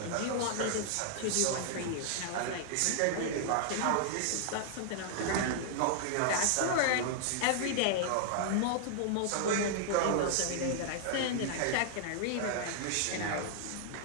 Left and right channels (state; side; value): different; both; correlation -0.01